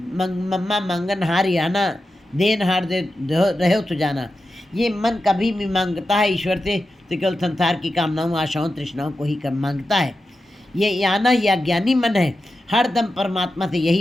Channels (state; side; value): normal; both; correlation 0.91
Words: मम्मा मंगन हार आना, देन हार दे रहे हो तो जाना। ये मन कभी भी मांगता है ईश्वर से तो केवल संसार की कामनाओं, आशाओं, तृष्णाओं को ही मांगता है। ये आना, ये अज्ञानी मन है, हर दम परमात्मा से